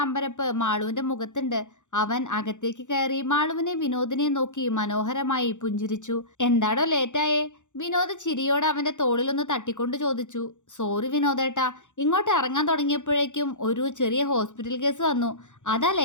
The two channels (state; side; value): late; right; 0.85 ms